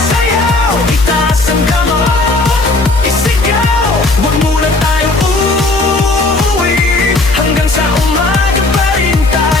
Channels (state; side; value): quieter; right; 3.1 dB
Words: sayaw! Itaas ang kamay, isigaw! Huwag muna tayong uuwi, hanggang sa umaga pa rin